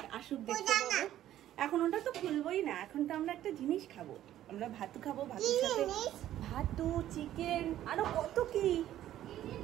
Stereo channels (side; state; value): left; quieter; 12.6 dB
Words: আসুক দেখতে পাবো। এখন ওটা তো খুলবোই না, এখন তো আমরা একটা জিনিস খাবো, আমরা ভাতু খাবো, ভাতুর সাথে ভাতু, চিকেন, আরো কত কি।